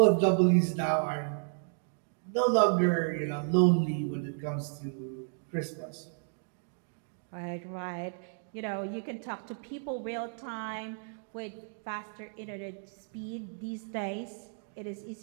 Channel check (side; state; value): left; silent; 56 dB below the other